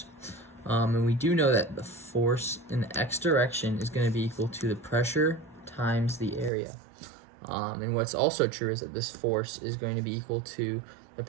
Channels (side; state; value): left; drops out; at 6.5 s